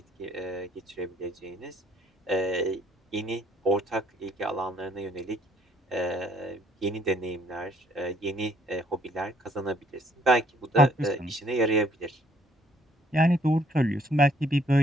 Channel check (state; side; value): normal; both; correlation 0.63